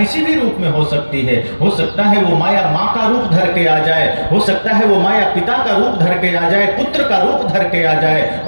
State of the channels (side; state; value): both; inverted; correlation -1.00